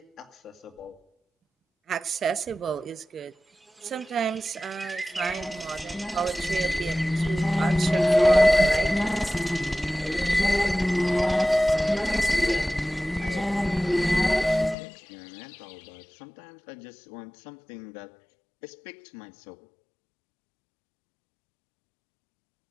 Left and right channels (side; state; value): right; drops out; at 14.8 s